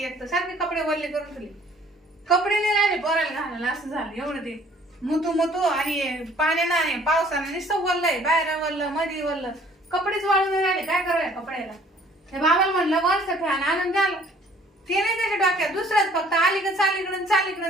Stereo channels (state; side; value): normal; both; correlation 0.56